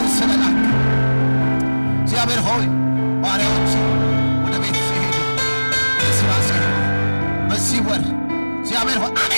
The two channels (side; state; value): both; inverted; correlation -1.00